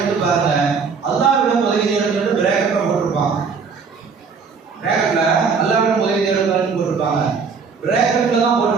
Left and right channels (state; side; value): quieter; left; 5.4 dB